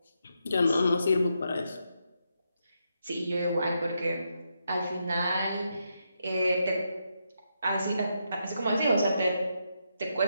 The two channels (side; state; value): both; inverted; correlation -0.82